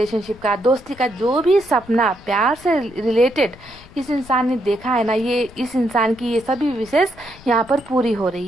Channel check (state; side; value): noise; left; rumble, 22 dB below the sound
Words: का, दोस्ती का, जो भी सपना प्यार से रिलेटेड इस इंसान ने देखा है ना, ये इस इंसान की ये सभी विशेष यहाँ पर पूरी हो